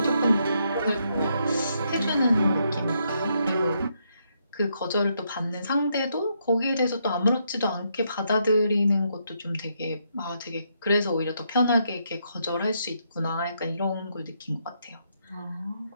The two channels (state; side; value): inverted; both; correlation -0.77